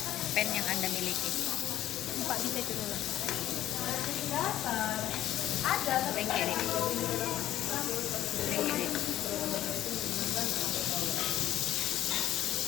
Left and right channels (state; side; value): quieter; right; 13.2 dB